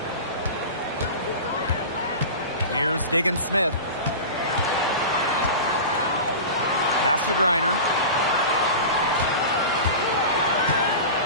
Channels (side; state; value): both; inverted; correlation -0.30